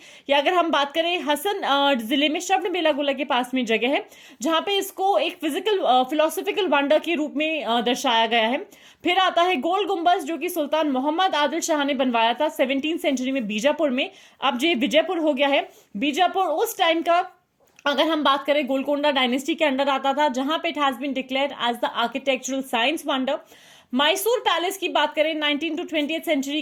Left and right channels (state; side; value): identical; both; correlation 1.00